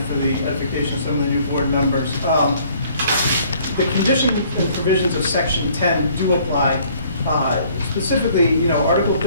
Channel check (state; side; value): inverted; both; correlation -0.59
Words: for the edification of some of the new board members. The conditions and provisions of Section 10 do apply. Specifically, you know, Article